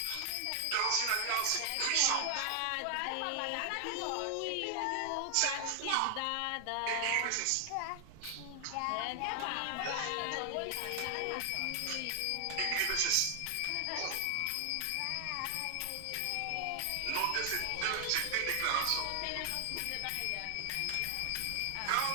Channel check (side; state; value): both; different; correlation 0.00